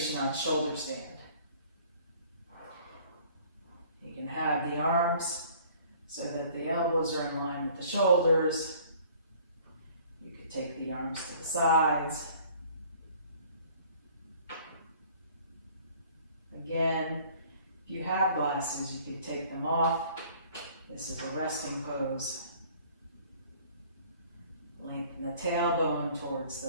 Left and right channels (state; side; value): inverted; both; correlation -0.54